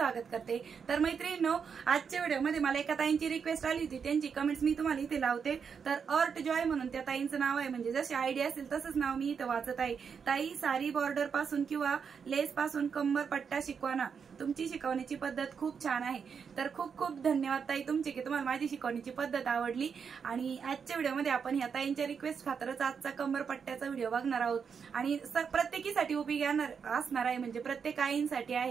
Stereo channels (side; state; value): left; quieter; 6.4 dB